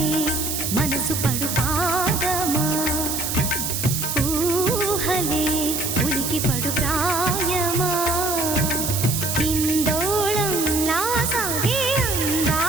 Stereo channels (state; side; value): noise; right; hiss, 2 dB below the sound